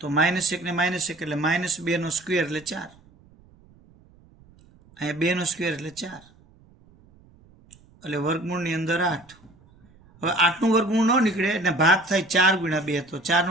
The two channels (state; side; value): noise; right; rumble, 28 dB below the sound